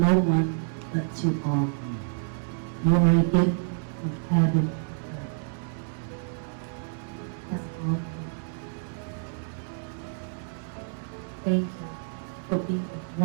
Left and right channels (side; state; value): left; silent; digital silence